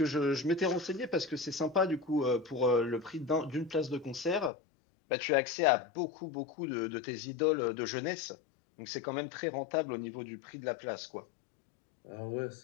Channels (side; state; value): right; drops out; at 4.5 s